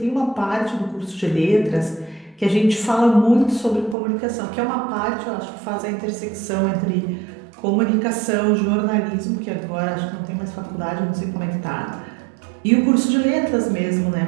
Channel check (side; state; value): left; drops out; at 4.0 s